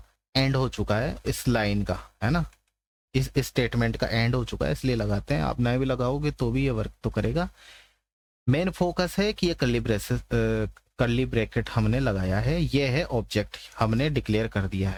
एंड हो चुका है, इस लाइन का, है ना, इस स्टेटमेंट का एंड हो चुका है, इसलिए लगाते हैं। आप नए भी लगाओगे तो भी ये वर्क तो करेगा। मेन फोकस है कि ये कर्ली ब्रैकेट हमने लगाया है, ये है ऑब्जेक्ट, हमने डिक्लेयर कर दिया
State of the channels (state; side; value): identical; both; correlation 1.00